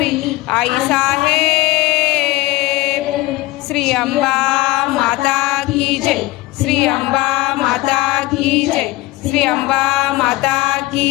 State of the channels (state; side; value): quieter; right; 19.5 dB